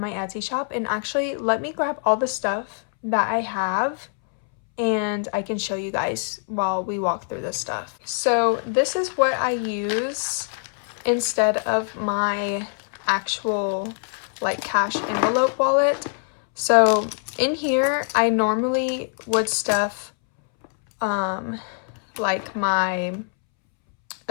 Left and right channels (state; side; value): silent; right; 63 dB below the other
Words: my Etsy shop. And actually, let me grab all the stuff that I have and I can show you guys while we walk through this stuff. So this is what I use instead of my actual like cash envelope wallet. So in here, I normally would stuff like my